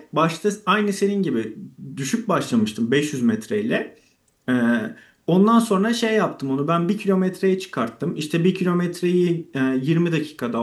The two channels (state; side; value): identical; both; correlation 1.00